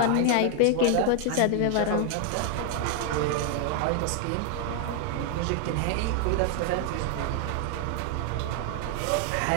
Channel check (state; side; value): different; both; correlation 0.00